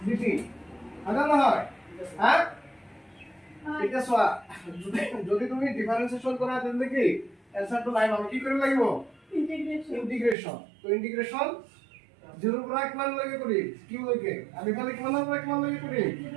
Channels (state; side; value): drops out; left; at 10.4 s